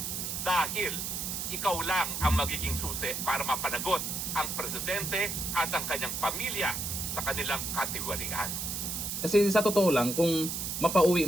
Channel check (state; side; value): noise; right; hiss, 3 dB below the sound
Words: dahil ikaw lang ang magiging susi para mapanagot ang presidente at ang kanyang pamilya sa kanilang katiwalian. Kasi sa totoo lang, kung mapauwi